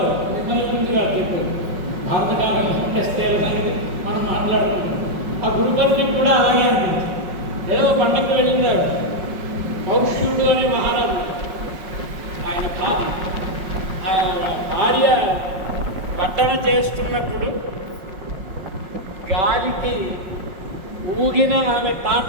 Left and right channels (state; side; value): late; left; 5.5 ms